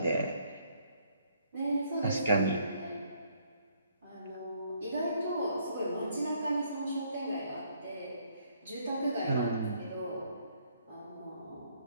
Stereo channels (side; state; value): both; inverted; correlation -0.67